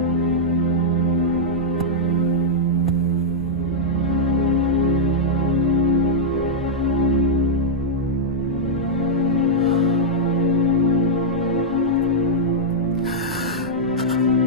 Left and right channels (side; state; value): both; normal; correlation -0.07